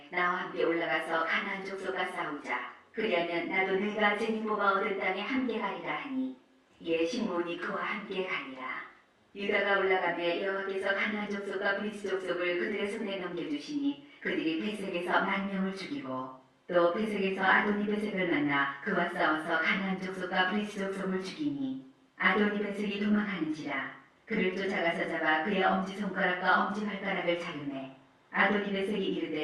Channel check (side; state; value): both; identical; correlation 1.00